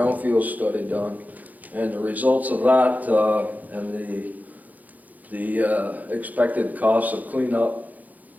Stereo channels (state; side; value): late; left; 0.080 ms